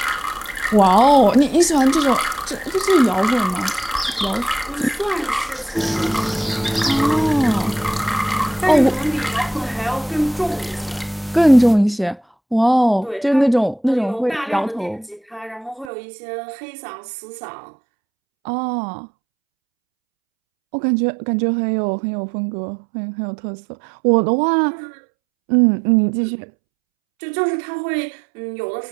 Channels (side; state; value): left; drops out; at 15.9 s